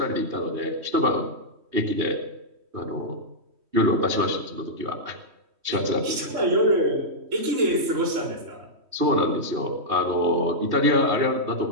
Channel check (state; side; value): late; left; 3.1 ms